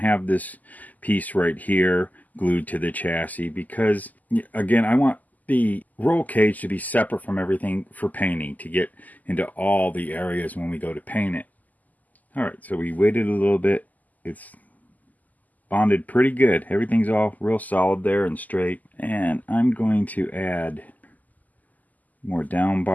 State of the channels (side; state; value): right; late; 0.080 ms